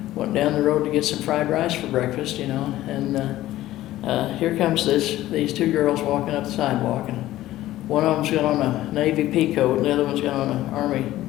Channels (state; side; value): quieter; right; 15.0 dB